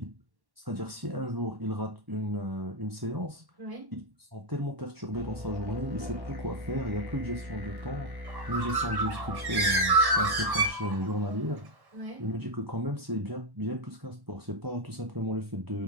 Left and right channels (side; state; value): left; late; 1.1 ms